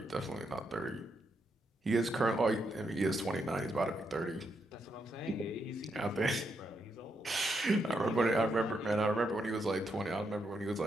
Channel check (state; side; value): normal; both; correlation 0.80